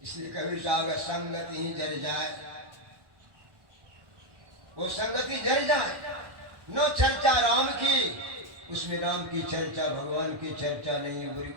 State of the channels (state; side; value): late; left; 1.1 ms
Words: कभी साहब संगति ही जर जाए, वो संगति जर जाए। न चर्चा राम की, उसमें राम की चर्चा, भगवान की चर्चा नहीं, बुरी